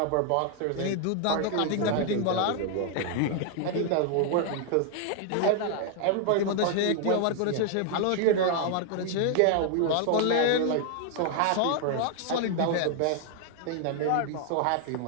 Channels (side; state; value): both; different; correlation 0.00